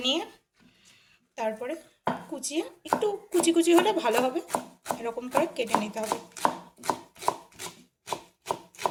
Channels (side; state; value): both; identical; correlation 1.00